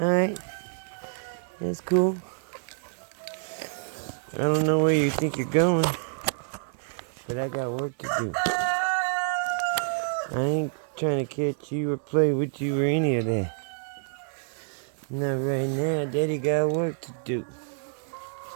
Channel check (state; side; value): silent; left; 60 dB below the other